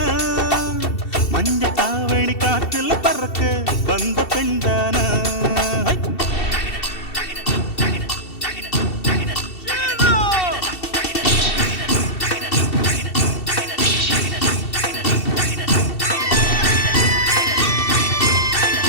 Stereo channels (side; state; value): right; late; 2.7 ms